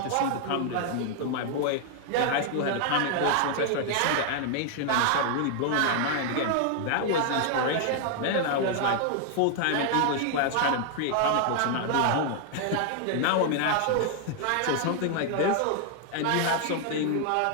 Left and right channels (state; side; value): different; both; correlation 0.00